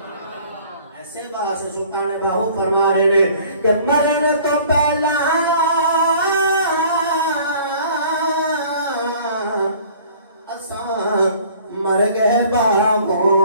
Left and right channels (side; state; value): both; inverted; correlation -0.52